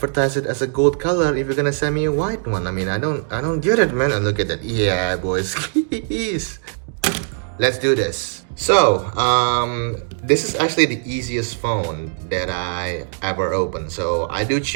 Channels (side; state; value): left; silent; digital silence